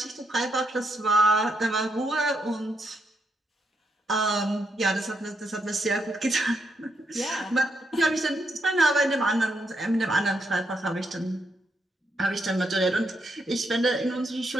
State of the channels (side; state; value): both; normal; correlation 0.79